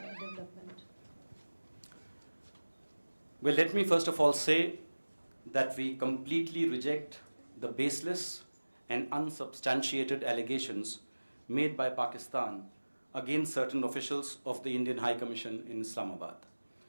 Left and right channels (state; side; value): inverted; both; correlation -1.00